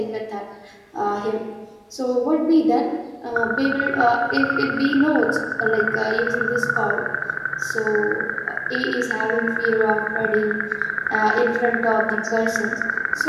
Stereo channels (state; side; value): identical; both; correlation 1.00